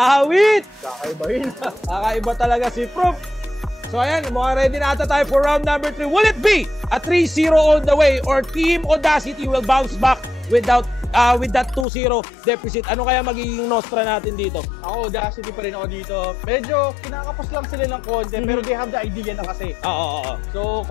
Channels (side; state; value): right; drops out; at 11.9 s